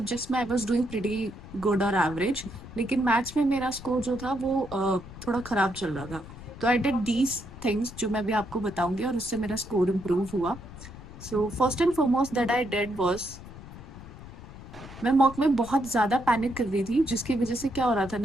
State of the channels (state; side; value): noise; left; rumble, 15 dB below the sound